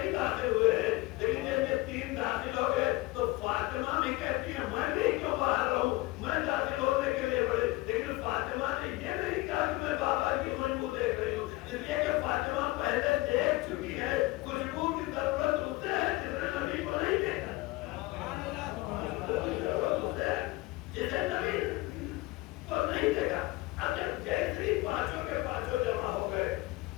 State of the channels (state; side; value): quieter; right; 20.6 dB